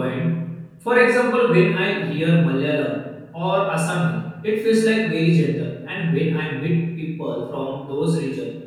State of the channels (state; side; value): identical; both; correlation 1.00